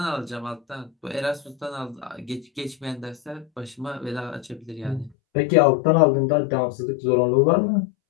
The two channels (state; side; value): drops out; right; at 5.1 s